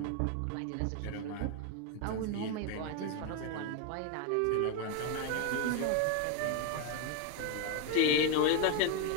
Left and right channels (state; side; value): different; both; correlation 0.01